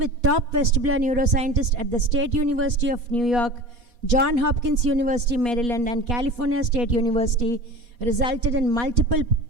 top vestibular neuroscientists at the State University of New York, Johns Hopkins University, Maryland, and California State University resulted in multiple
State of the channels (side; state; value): left; late; 4.2 ms